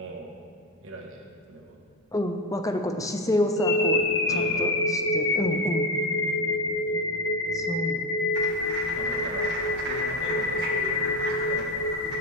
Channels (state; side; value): normal; both; correlation 0.15